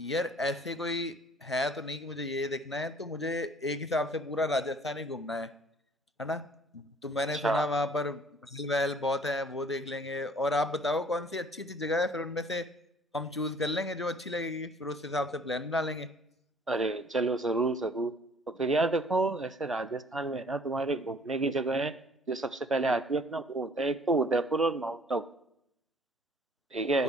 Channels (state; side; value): normal; both; correlation 0.55